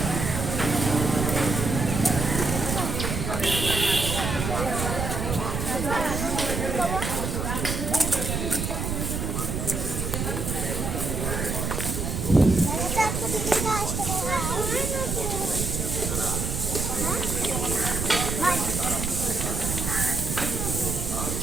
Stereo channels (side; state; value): right; noise; rumble, 2 dB below the sound